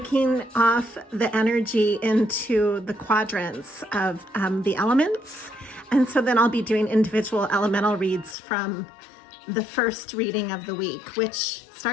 off the energy into the quadrants of the elements. And so then I'll be doing individual elemental reads from the first reading of the week, which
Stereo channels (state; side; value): drops out; right; at 8.3 s